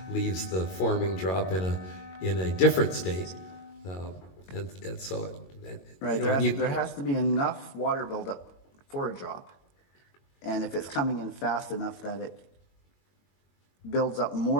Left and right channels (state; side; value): late; right; 22 ms